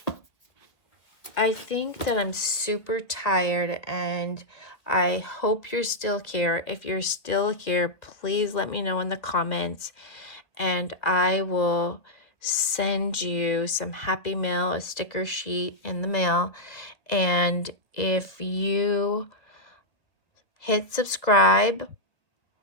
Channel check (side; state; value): right; late; 1.8 ms